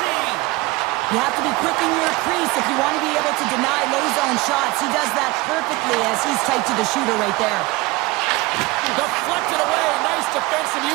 You have to be quick in your crease if you want to be able to deny low zone shots. He does that perfectly as he's tight to the shooter right there. Deflected away. Nice defensive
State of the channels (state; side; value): quieter; left; 21.7 dB